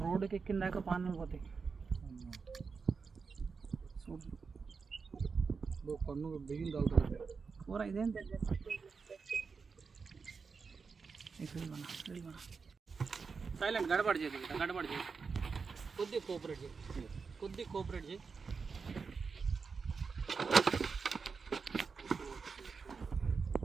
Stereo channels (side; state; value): left; quieter; 5.1 dB